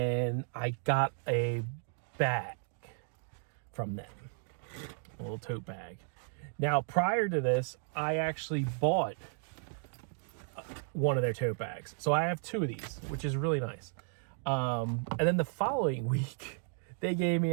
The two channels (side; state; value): left; silent; 55 dB below the other